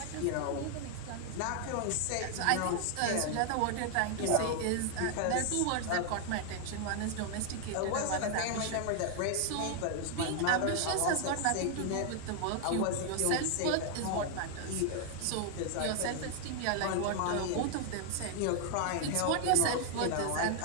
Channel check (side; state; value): both; different; correlation 0.00